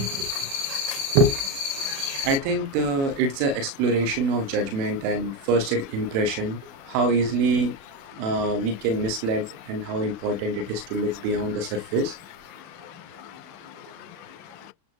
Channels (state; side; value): late; left; 36 ms